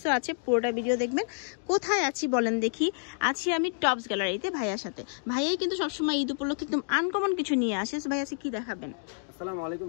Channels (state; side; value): silent; right; digital silence